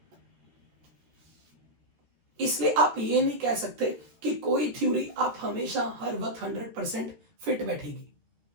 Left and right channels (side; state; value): left; late; 13 ms